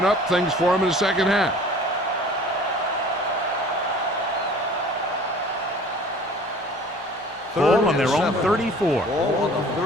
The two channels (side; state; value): both; normal; correlation 0.47